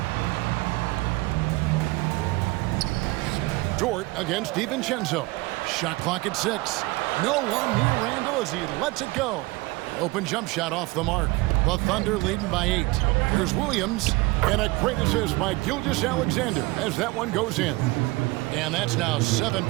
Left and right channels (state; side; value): quieter; left; 22.6 dB